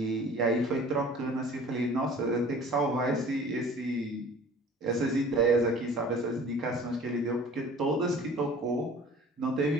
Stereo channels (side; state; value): both; normal; correlation 0.46